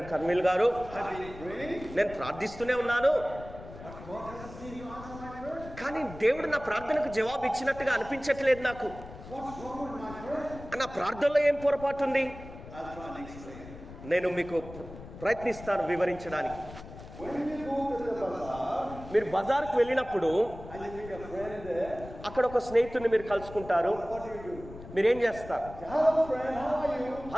కర్మిల్ గారు, I've been praying, నేను ప్రార్థిస్తూనే ఉన్నాను, but God doesn't seem to answer my prayer. కానీ దేవుడు నా ప్రార్థనకు జవాబు ఇచ్చినట్టుగా అనిపించట్లేదు నాకు. What's wrong with my prayer? నా ప్రార్థనలో ఏం పొరపాటు ఉంది? I'll try and explain. నేను మీకు ప్రయత్నిస్తాను వివరించడానికి. When you go to the bazaar మీరు బజార్కు వెళ్ళినప్పుడు and you meet a friend there, అక్కడ ఒక స్నేహితుడిని మీరు కలుసుకుంటారు. what do? మీరేం చేస్తారు? Say, hello friend, how are you?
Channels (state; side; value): noise; left; rumble, 15 dB below the sound